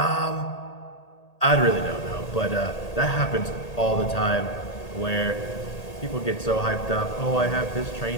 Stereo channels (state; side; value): late; right; 1.8 ms